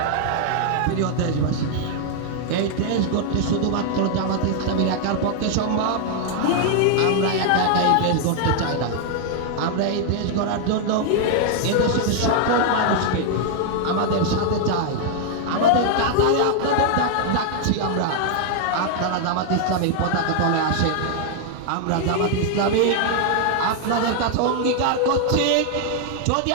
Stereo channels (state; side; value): different; both; correlation 0.00